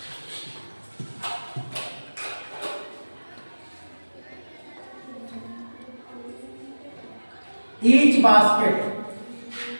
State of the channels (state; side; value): inverted; both; correlation -1.00